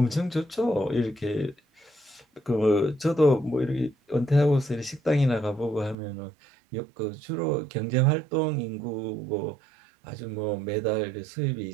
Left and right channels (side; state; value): left; drops out; at 6.0 s